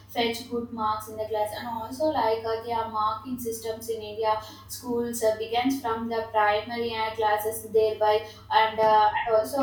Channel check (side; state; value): both; identical; correlation 1.00